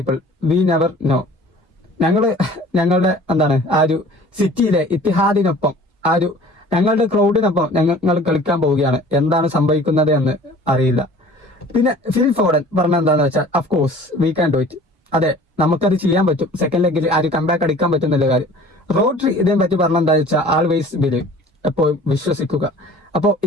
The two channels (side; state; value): both; normal; correlation 0.47